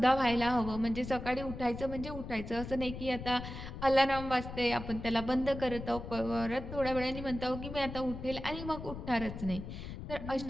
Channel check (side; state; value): left; noise; rumble, 9 dB below the sound